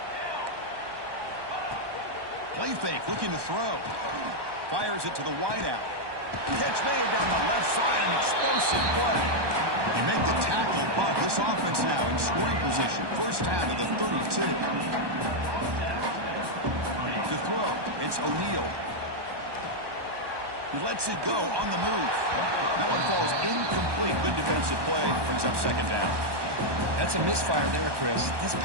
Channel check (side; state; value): left; late; 1.2 ms